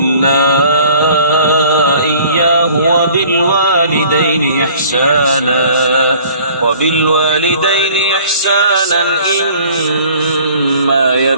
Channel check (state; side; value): inverted; both; correlation -0.52